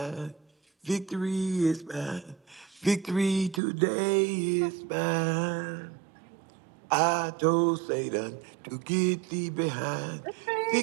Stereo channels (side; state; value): left; drops out; at 3.6 s